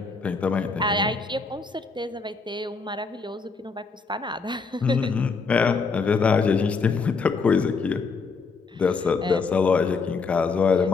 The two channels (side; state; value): right; quieter; 4.6 dB